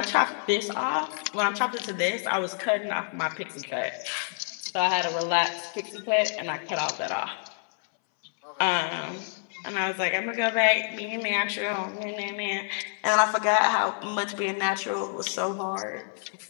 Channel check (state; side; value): silent; right; 60 dB below the other